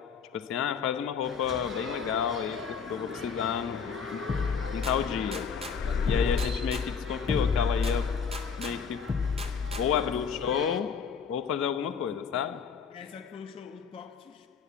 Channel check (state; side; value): quieter; right; 6.3 dB